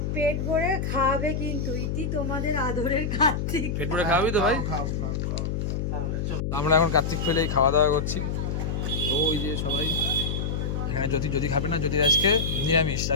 পেট ভরে খাওয়াবে কিন্তু। ইতি তোমাদের আদরের কার্তিক। পেট ভরে খাওয়াবি তো ভাই? আমরা এখন কার্তিক ফেলেই খাওয়া দাওয়া করছি। ওই যে সবাই এখানে যদি খাবে না, যদি আজকে নিরামিষ,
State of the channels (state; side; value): noise; left; hum, 1 dB below the sound